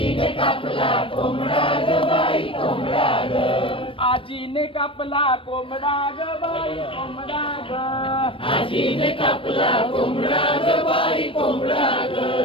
कापला कोंबडा ग बाई कोंबडा ग. आजीने कापला कोंबडा ग बाई कोंबडा ग. आजीने कापला कोंबडा ग बाई कोंबडा ग.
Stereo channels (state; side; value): late; right; 0.25 ms